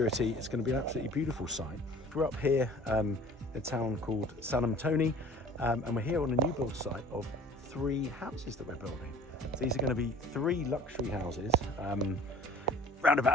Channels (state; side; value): normal; both; correlation 0.46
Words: It's going to be an absolutely beautiful site. We're up here in a town called San Antonio, and we're here on a new build site of 3 houses that we're building. So these are going to be 3 luxury houses, around